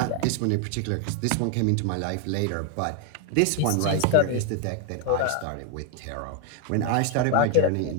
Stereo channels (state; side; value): different; both; correlation 0.01